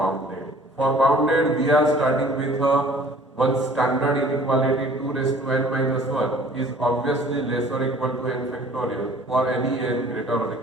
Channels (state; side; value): normal; both; correlation 0.51